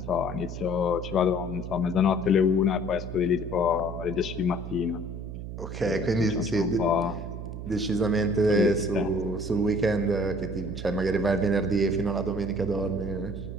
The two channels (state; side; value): noise; right; hum, 8 dB below the sound